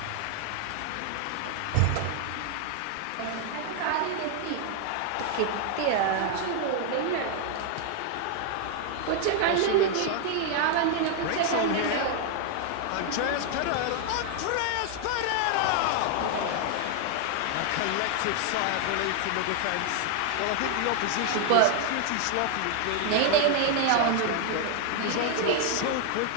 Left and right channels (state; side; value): different; both; correlation 0.00